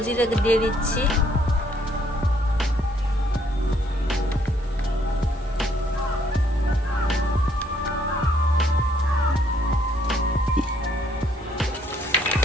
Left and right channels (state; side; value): normal; both; correlation 0.67